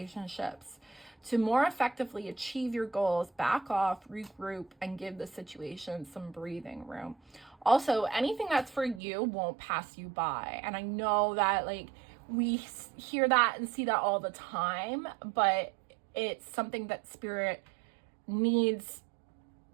To more effectively achieve your goals, back off, regroup, and give the situation some breathing room. Also, anything that's for you won't pass you by. And I know that we hear that and see that all the time, but it's something that spirit needs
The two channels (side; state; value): left; drops out; at 9.0 s